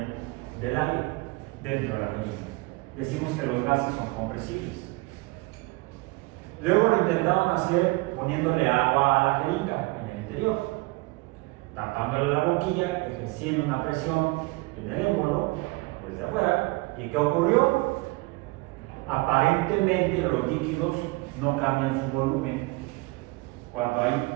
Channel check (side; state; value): left; quieter; 24.3 dB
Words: del aire dentro de la jeringa. Decimos que los gases son compresibles. Luego lo intentaron hacer poniéndole agua a la jeringa en el interior, tapándole la boquilla, ejerciendo una presión en el émbolo desde afuera. ¿Y qué ocurrió? Aparentemente los líquidos no cambian su volumen cuando